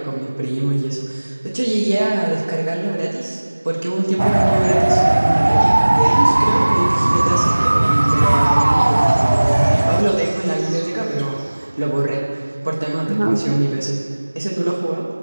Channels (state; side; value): inverted; both; correlation -1.00